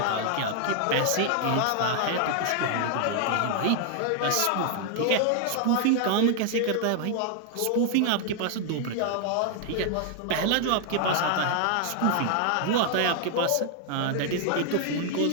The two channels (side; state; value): both; different; correlation 0.00